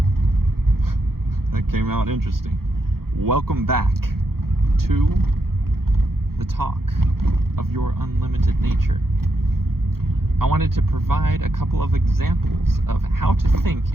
That came out interesting. Welcome back to the talk of your unlimited nature. I wanted to provide a couple of examples of how to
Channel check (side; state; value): left; late; 0.94 ms